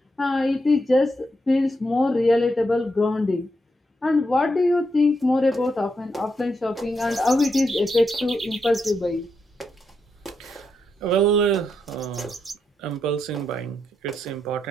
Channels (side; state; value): both; normal; correlation 0.82